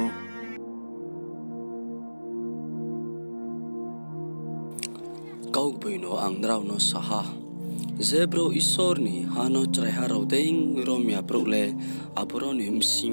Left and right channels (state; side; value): inverted; both; correlation -1.00